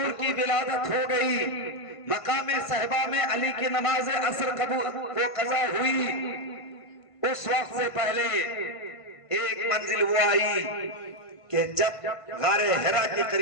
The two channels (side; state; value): right; late; 1.5 ms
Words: کی ولادت ہو گئی, مقام صحبہ میں علی کی نماز عصر وہ قضا ہوئی, اس وقت سے پہلے ایک منزل وہ آئی کہ جب غار حرا کے